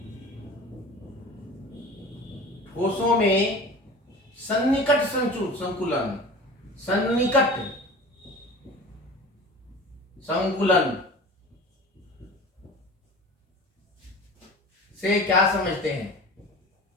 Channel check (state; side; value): normal; both; correlation 0.38